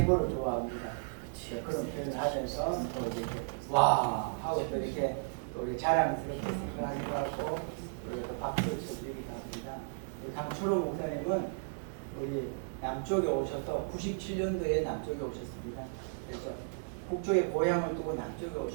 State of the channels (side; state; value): left; silent; digital silence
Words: 좋아합니다. 그런 표현을 하면서 또 이렇게 와 하고 또 이렇게 또 우리 자랑스럽게 생각하기도 하고 우리가 또 박수를 쳐드리기도 합니다. 우리 강초로 목사님은 우리 남쪽에 오셔서 97년도에 남쪽에 오셨습니다. 그래서 북쪽에 고향을 두고 남쪽에